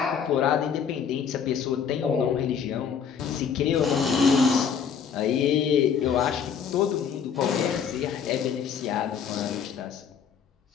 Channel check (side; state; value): right; quieter; 7.1 dB